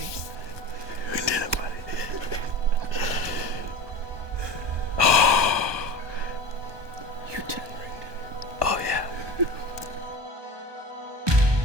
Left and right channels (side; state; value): left; late; 1.2 ms